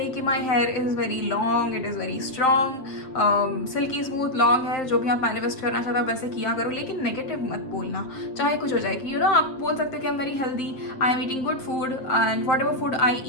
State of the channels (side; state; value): right; late; 7.5 ms